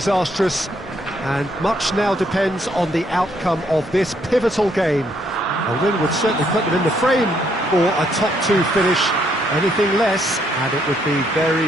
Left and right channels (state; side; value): normal; both; correlation 0.71